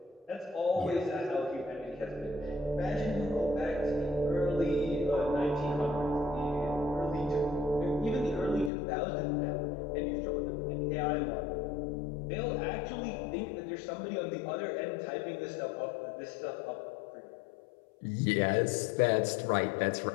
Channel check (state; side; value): drops out; right; at 8.7 s